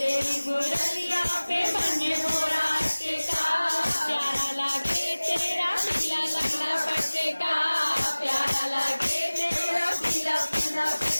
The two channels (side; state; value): both; inverted; correlation -1.00